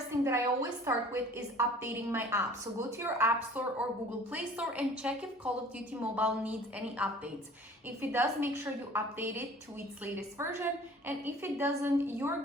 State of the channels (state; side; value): normal; both; correlation 0.49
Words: thing that I always start with is updating my app. So go to your App Store or Google Play Store and check if Call of Duty Mobile needs any updates. If it does, make sure you update it to its latest version. And if it doesn't, you're